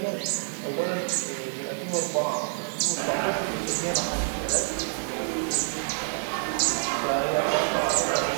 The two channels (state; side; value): silent; left; digital silence